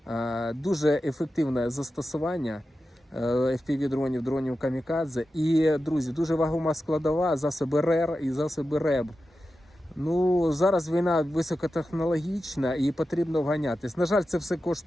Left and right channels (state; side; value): normal; both; correlation 0.92